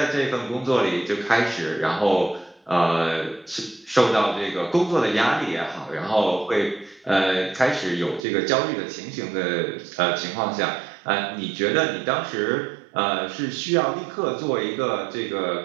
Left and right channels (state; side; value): drops out; left; at 8.2 s